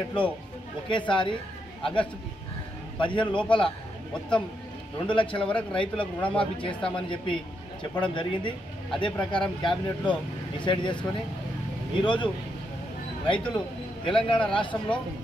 ఒకేసారి ఆగస్టు 15 లోపల మొత్తం 2 లక్షల వరకు రైతులకు రుణమాఫీ చేస్తామని చెప్పడం జరిగింది. అదే ప్రకారం క్యాబినెట్లో డిసైడ్ చేసుకొని ఈరోజు రైతులు తెలంగాణ రాష్ట్రంలో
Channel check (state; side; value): normal; both; correlation 0.80